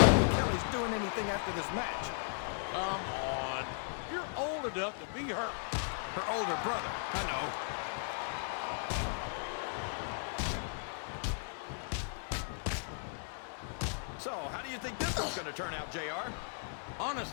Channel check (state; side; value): silent; right; 54 dB below the other